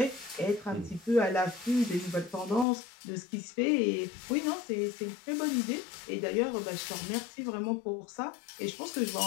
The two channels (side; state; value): right; drops out; at 2.7 s